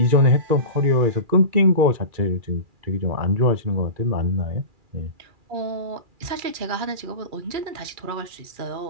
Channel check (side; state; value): left; late; 2.4 ms